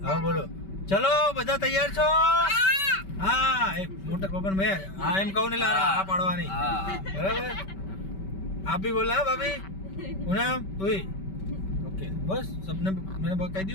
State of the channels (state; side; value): late; right; 5.2 ms